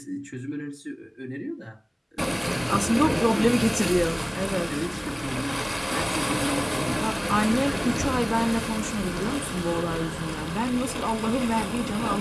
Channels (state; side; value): identical; both; correlation 1.00